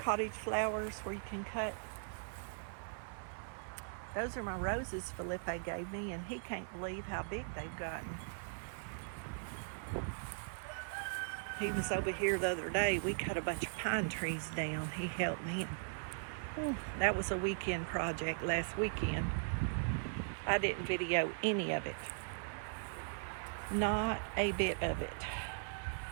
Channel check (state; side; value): silent; left; 52 dB below the other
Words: where you can cut. Those are my roses Felipe gave me, and he can't believe how big they've gotten. He was over here the other day. We cut a bunch of pine trees down. He helped me. And, that was a weekend project last weekend. I didn't video any of it. Not a bit of it.